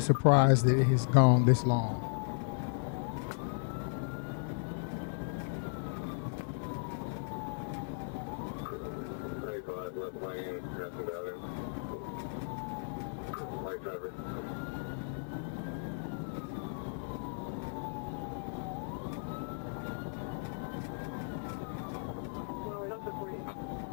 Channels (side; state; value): right; silent; 54 dB below the other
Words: that it has gone this long.